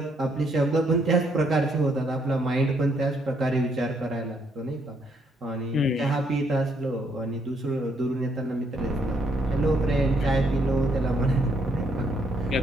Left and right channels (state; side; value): normal; both; correlation 0.72